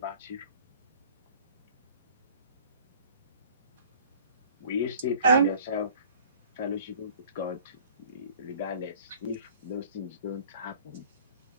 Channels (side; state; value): both; inverted; correlation -0.49